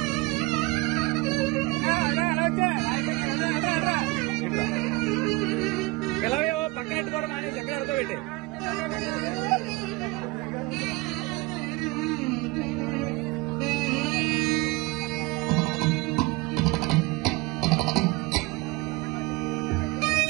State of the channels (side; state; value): left; quieter; 23.4 dB